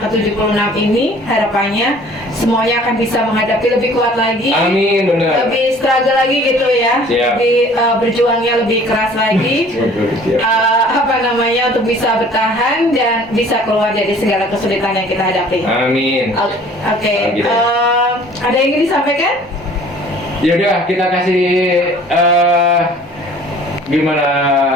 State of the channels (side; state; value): both; normal; correlation 0.51